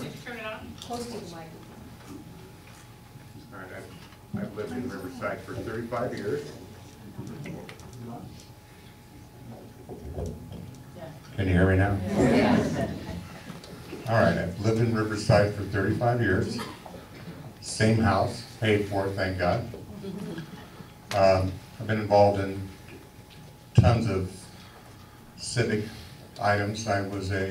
me? Turn it on. Close to the microphone. All right, I've lived in Riverside for 35 years. Can you hear me now? All right, I've lived in Riverside for 35 years. Same house, paid for, thank God. I've been involved in tons of civic items. I was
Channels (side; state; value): both; identical; correlation 1.00